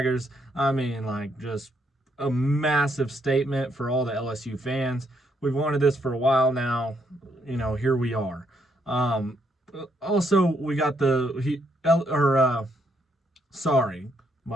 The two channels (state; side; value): normal; both; correlation 0.74